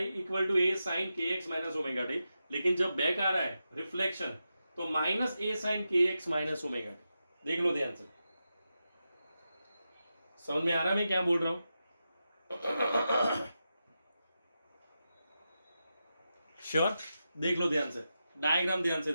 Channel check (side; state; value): both; inverted; correlation -0.89